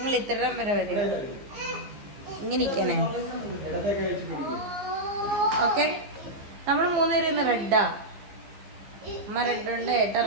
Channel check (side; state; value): left; late; 15 ms